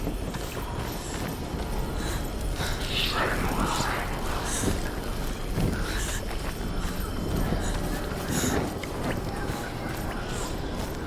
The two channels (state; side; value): identical; both; correlation 1.00